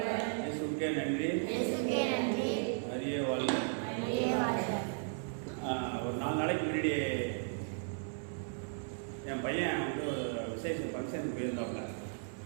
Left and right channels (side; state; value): left; silent; 54 dB below the other